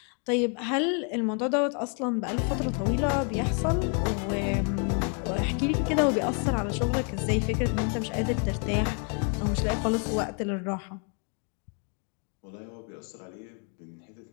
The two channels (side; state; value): right; quieter; 39.5 dB